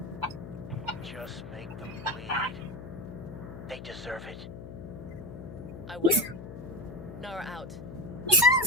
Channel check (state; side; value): noise; left; hum, 11 dB below the sound